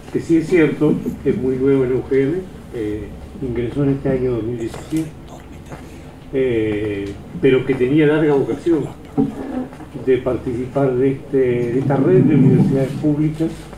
que sí es cierto, es muy nuevo en la UGM, ingresó en este año 2017, pero que tenía larga vocación de participar de esta red de universidades públicas,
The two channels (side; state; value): both; identical; correlation 1.00